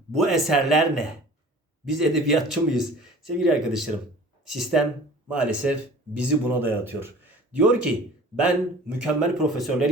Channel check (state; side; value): normal; both; correlation 0.45